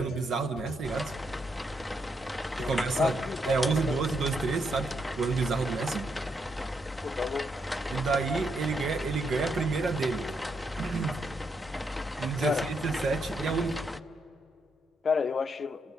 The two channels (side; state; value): both; normal; correlation 0.78